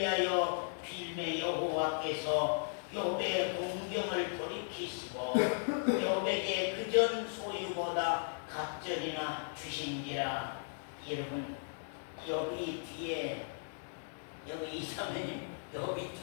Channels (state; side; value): silent; right; digital silence